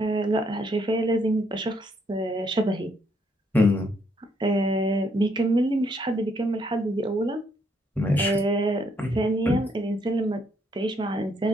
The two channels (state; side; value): normal; both; correlation 0.72